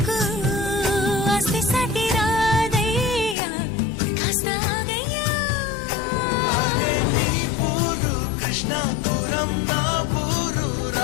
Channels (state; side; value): drops out; right; at 3.4 s